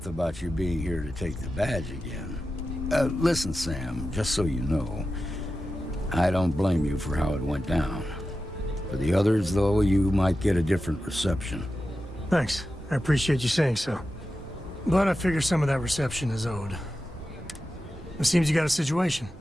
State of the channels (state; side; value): normal; both; correlation 0.92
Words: about you being here to take the badge again. Listen, Sam, just so you know, I don't blame you for how it went down. For the others, though, you might get a different reception. Thanks. I appreciate you saying so. But I figure some of that reception is owed. It seems you got a situation.